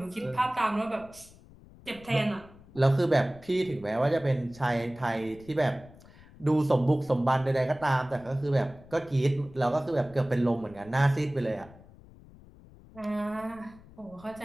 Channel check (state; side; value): noise; left; rumble, 22 dB below the sound